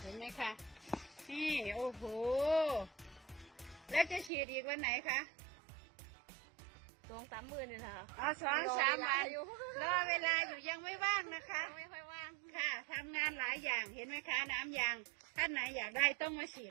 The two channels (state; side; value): drops out; left; at 4.3 s